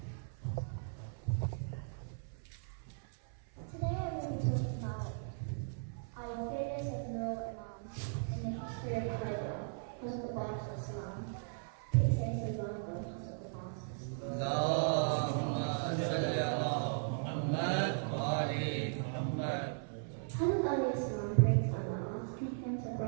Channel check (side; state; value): left; silent; 53 dB below the other